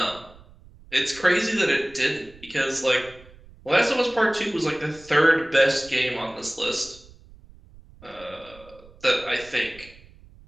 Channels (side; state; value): right; noise; rumble, 23 dB below the sound